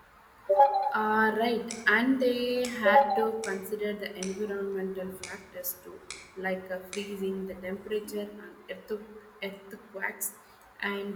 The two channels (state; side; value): identical; both; correlation 1.00